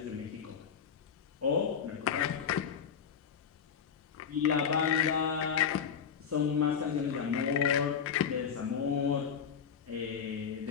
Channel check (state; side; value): quieter; right; 7.3 dB